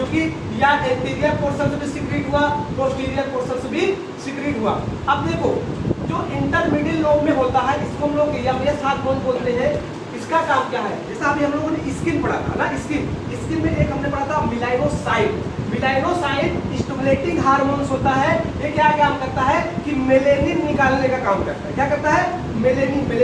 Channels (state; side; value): identical; both; correlation 1.00